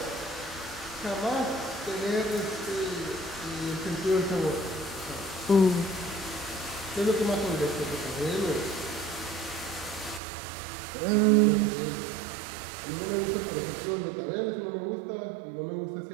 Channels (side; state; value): left; drops out; at 10.2 s